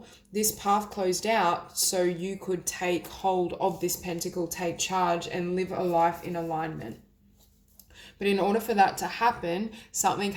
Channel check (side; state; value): both; identical; correlation 1.00